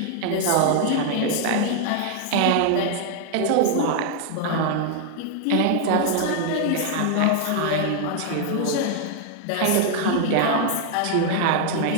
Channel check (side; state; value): both; different; correlation 0.00